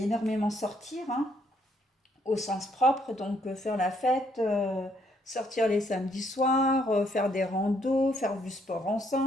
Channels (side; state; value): both; normal; correlation 0.70